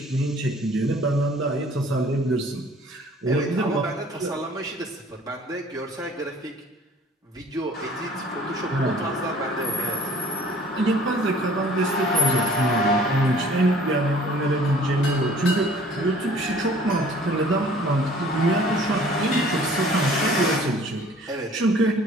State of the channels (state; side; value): normal; both; correlation 0.52